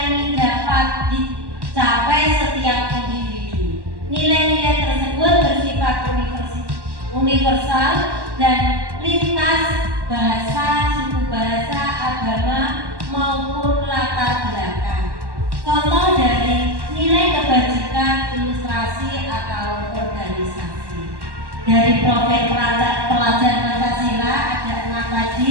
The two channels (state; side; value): late; left; 1.1 ms